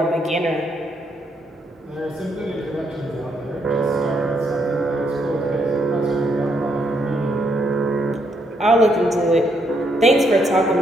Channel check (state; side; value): normal; both; correlation 0.74